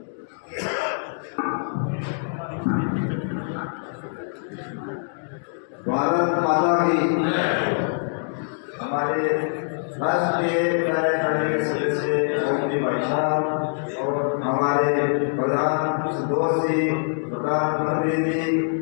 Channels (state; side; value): silent; right; digital silence